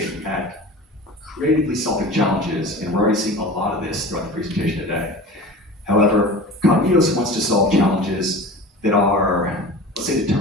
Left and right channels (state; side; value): normal; both; correlation 0.35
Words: at creatively solving challenges, and we're already seeing a lot of this throughout the presentation today. However, Kognitos wants to solve challenges that are, let's say,